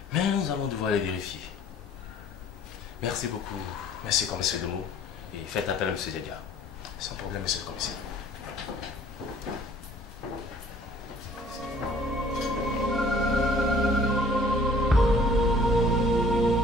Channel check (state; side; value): normal; both; correlation 0.54